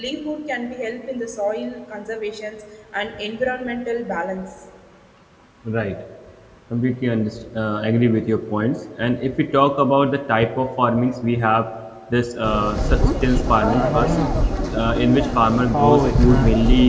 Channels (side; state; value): both; identical; correlation 1.00